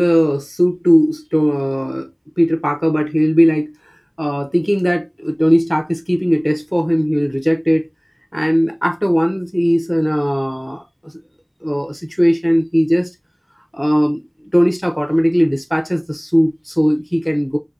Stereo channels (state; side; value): identical; both; correlation 1.00